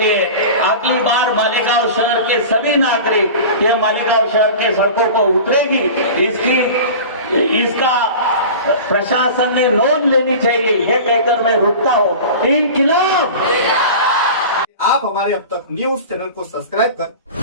अगली बार मालेगांव शहर के सभी नागरिक ये मालेगांव शहर के सड़कों पर उतरेगी। इसका प्रशासन ने नोंद लेनी चाहिए, ये कहकर मैं रुकता हूँ। इनकलाब। आप हमारे अब तक न्यूज चैनल को सब्सक्राइब कर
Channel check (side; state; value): both; inverted; correlation -0.35